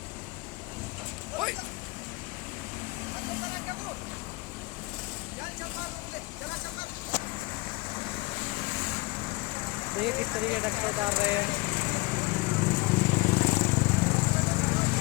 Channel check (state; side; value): quieter; right; 24.0 dB